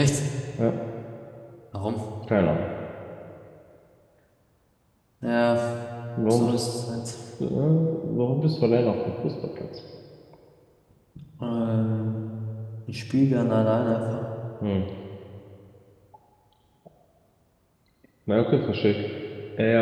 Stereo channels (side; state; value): both; identical; correlation 1.00